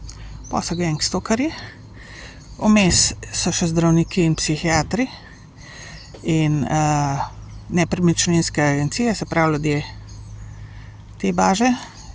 pa so gangstokarji, vmes so še zdravniki in psihiatri in nepremičninske agencije, se pravi ljudje te baže,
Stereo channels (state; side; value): identical; both; correlation 1.00